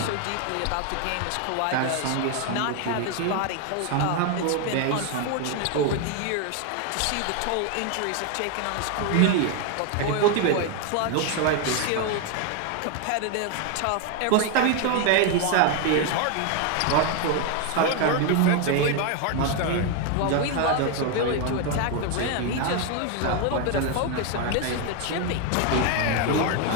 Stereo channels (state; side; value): different; both; correlation 0.01